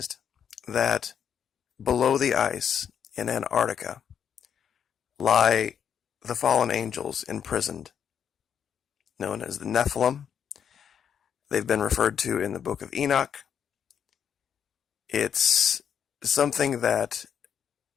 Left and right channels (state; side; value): quieter; right; 8.2 dB